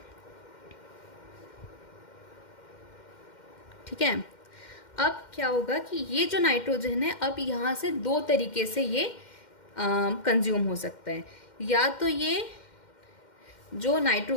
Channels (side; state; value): right; late; 2.1 ms